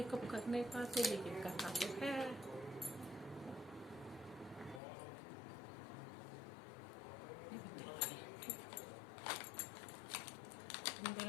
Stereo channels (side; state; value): right; drops out; at 4.8 s